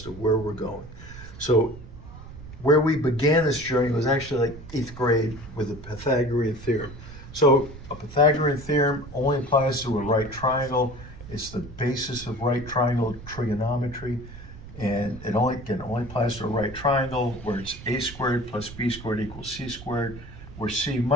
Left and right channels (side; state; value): right; noise; rumble, 15 dB below the sound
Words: to where we're going. So where we began this journey was actually like 8th grade with the Pythagorean theorem. So a Pythagorean theorem only applies to a right triangle. It's the basis of right triangle trigonometry. And it only applies to a right triangle where it's a squared plus b squared equals c squared, where c